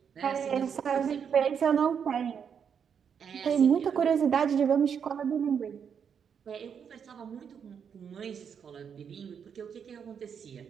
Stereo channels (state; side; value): quieter; left; 7.3 dB